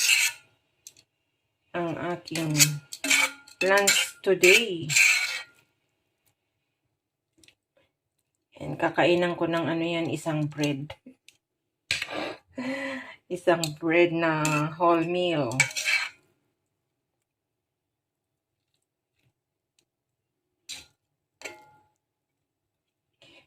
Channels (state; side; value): identical; both; correlation 1.00